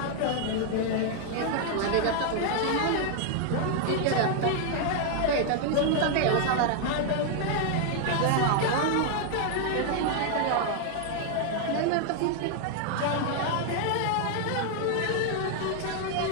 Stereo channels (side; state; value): both; different; correlation 0.00